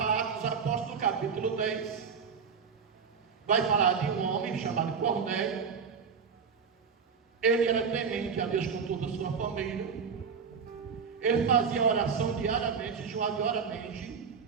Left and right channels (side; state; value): left; quieter; 6.1 dB